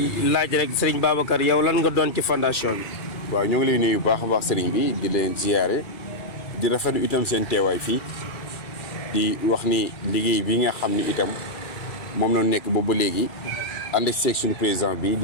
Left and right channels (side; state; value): right; late; 2.4 ms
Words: laaj rek Serigne Babacar yow lan nga doon ci fondation bi. waaw ñoo ngi lay nuyu bu baax a baax Serigne bi di leen ziyaare di rafetlu itam seen teewaay fii di wax ni liggéey bi nga xam ni itam moom la nekk boobu ba léegi. ànd seeg suñu président bi